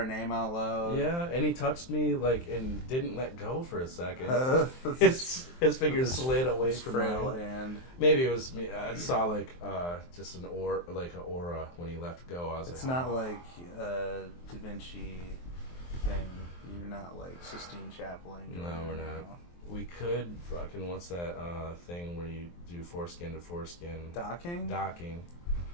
name out loud. Yeah, and he touched me and didn't let go for a second. His finger slid away from frail mine. hand. Maybe it was me. I saw just an aura when he let go. I was it's not like Da Vinci thing. You're not like Sistine Chapeling. No, we're not. We could fucking what's that thing where you do foreskin to foreskin? Docking.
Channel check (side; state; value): right; late; 23 ms